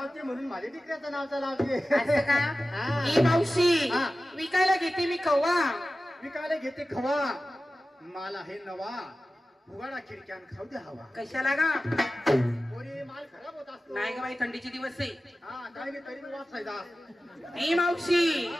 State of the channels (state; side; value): normal; both; correlation 0.95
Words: म्हणून माझ्या टिकऱ्याचं नावचा लावते. असं का? हा. ई मावशी हा. विकायला घेते मी कव्वा. विकायला घेते खवा, माल आहे नवा, उघडा खिडक्यान खाऊ दे हवा. कशाला गा? पोरी माल खराब होत असतो. नाही ग बाई थंडीचे दिवस आहे. हा काय नाही तरी वाचायचा. ई मावशी